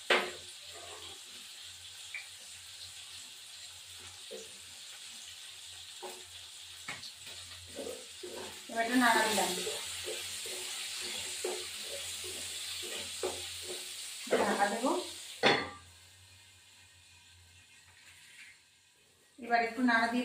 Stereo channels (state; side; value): identical; both; correlation 1.00